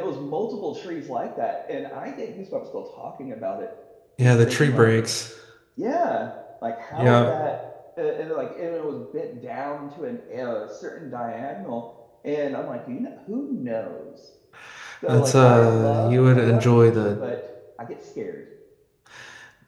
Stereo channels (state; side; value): identical; both; correlation 1.00